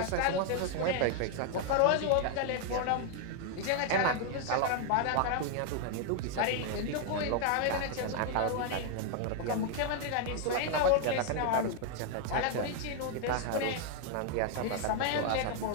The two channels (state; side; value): different; both; correlation 0.00